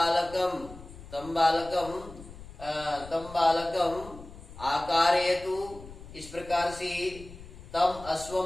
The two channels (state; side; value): noise; left; rumble, 16 dB below the sound